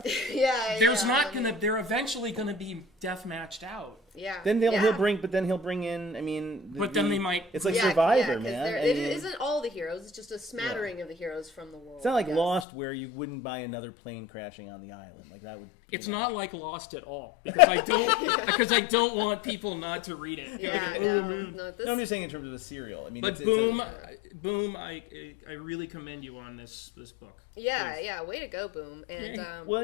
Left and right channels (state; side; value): drops out; right; at 12.7 s